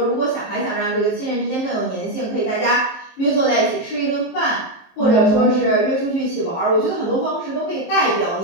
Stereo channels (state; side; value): late; right; 23 ms